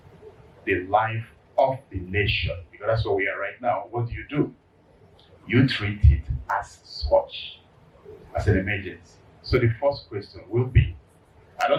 the life of the nation, because that's where we are right now, what do? You treat it as such, as an emergency. So the first question will be, I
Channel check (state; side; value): identical; both; correlation 1.00